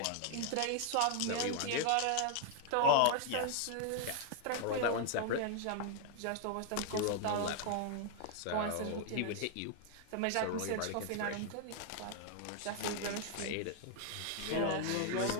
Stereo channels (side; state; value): both; different; correlation 0.00